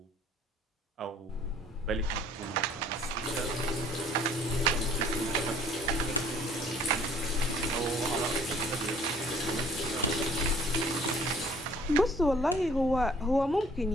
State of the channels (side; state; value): both; normal; correlation 0.56